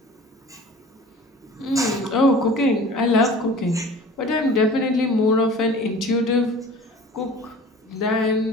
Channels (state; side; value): normal; both; correlation 0.43